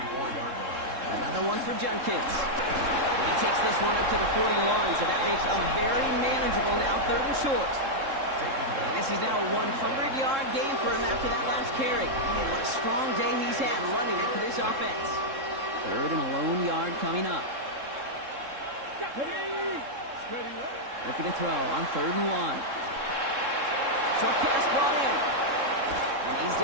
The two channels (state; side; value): late; left; 3.7 ms